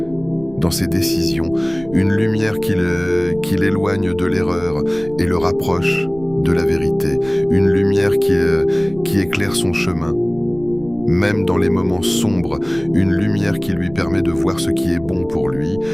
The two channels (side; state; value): right; noise; rumble, 19 dB below the sound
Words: dans ses décisions, une lumière qui l'éloigne de l'erreur et le rapproche de la vérité, une lumière qui éclaire son chemin, même dans les moments sombres, une lumière qui lui permet de voir ce qui est bon pour lui,